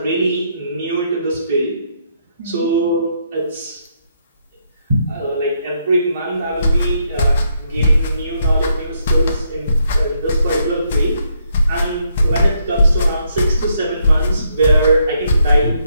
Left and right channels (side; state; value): both; inverted; correlation -0.75